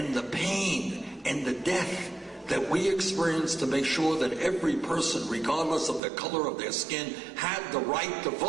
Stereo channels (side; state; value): left; drops out; at 6.0 s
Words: the pain and the death that we experience to make sure that every person, regardless of the color of their skin, had the right to